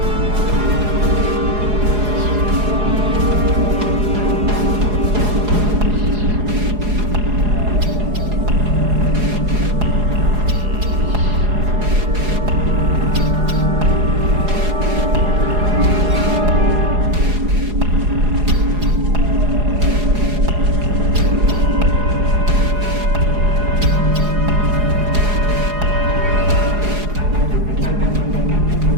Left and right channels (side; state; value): left; late; 4.8 ms